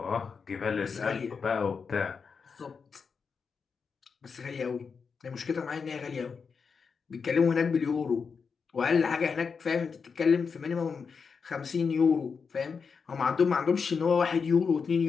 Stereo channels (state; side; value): quieter; right; 5.6 dB